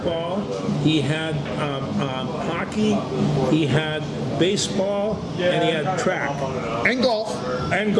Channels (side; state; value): both; identical; correlation 1.00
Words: he had hockey, he had baseball, and he had track And golf. and